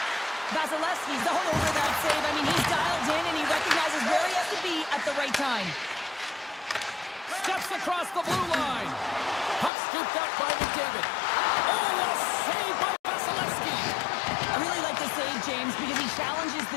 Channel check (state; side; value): drops out; right; at 9.7 s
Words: Vasilevsky's all over that save. I mean, he's dialed in, and he recognizes where he has to be at the right time. Steps across the blue line. Puck Scooped up by McDavid. Oh, a save by Vasilevsky. I really like the save, James, because he challenges